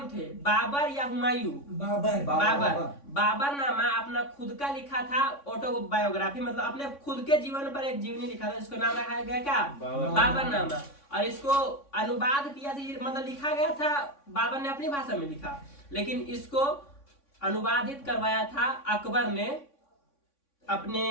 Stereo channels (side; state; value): right; late; 3.6 ms